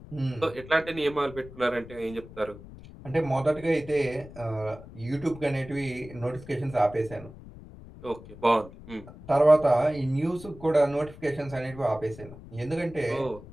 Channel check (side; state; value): left; noise; rumble, 17 dB below the sound